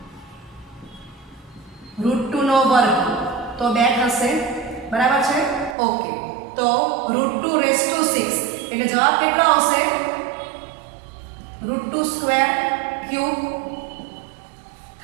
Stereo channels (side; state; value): left; drops out; at 5.8 s